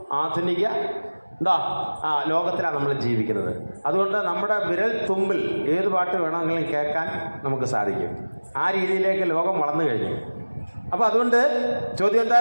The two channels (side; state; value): both; inverted; correlation -1.00